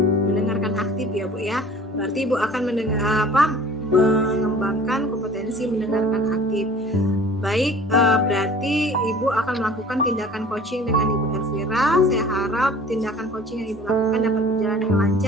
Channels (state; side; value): normal; both; correlation 0.47